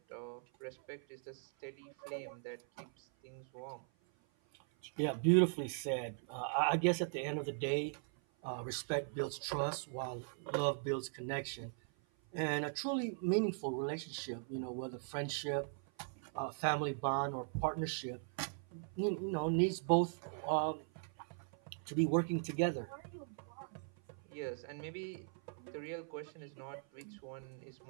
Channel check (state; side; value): silent; left; 51 dB below the other